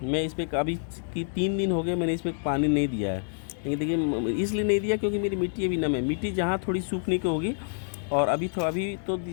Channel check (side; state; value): right; silent; digital silence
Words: मैं इस पर अभी 3 दिन हो गए मैंने इस पर पानी नहीं दिया है। लेकिन देखिए, इसलिए नहीं दिया क्योंकि मेरी मिट्टी अभी नम है। मिट्टी जहाँ थोड़ी सूखने की होगी, और अभी